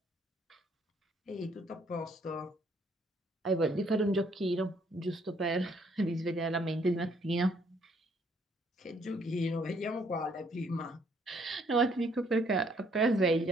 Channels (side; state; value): both; normal; correlation 0.67